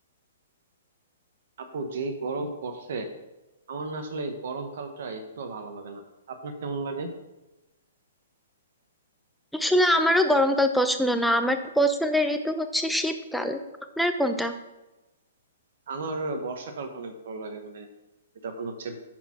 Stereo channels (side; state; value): both; normal; correlation 0.51